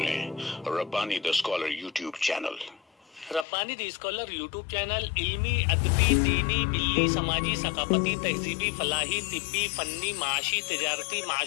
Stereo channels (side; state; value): right; drops out; at 3.5 s